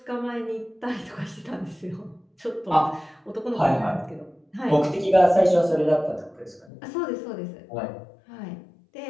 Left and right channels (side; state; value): right; drops out; at 6.7 s